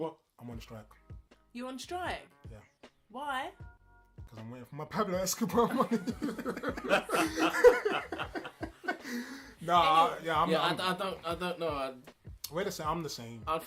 I'm on strike. You on strike? Yeah. Why? Because I'm waiting for my Pablo Escobar money. I don't know. Wait a second, I'm the same. I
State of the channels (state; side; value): identical; both; correlation 1.00